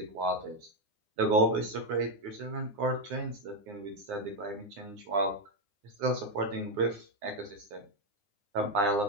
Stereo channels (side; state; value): left; late; 9.8 ms